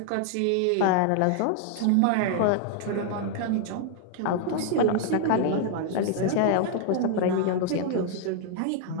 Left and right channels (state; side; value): different; both; correlation 0.00